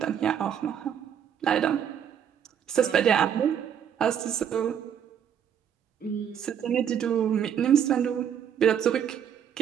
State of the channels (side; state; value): left; quieter; 8.7 dB